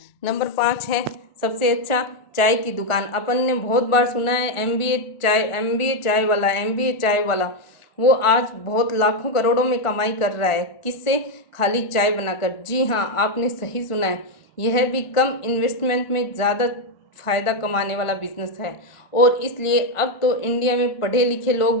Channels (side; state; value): right; late; 1.4 ms